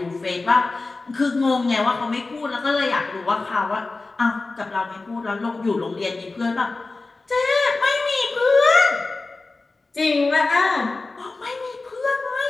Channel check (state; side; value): quieter; right; 3.5 dB